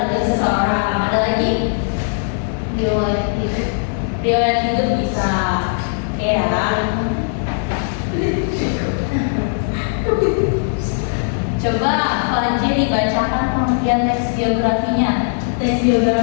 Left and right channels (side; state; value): right; silent; digital silence